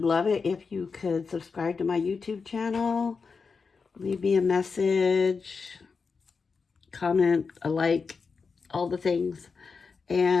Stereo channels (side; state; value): right; quieter; 5.0 dB